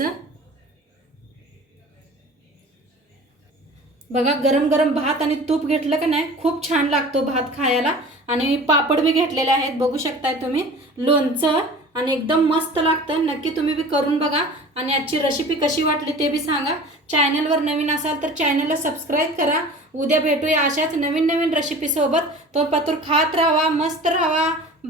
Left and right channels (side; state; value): both; normal; correlation 0.41